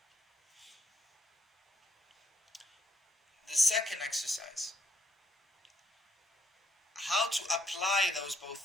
The second exercise, how to apply those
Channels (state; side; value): normal; both; correlation 0.74